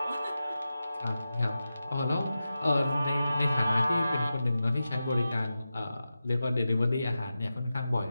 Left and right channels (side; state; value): both; inverted; correlation -0.92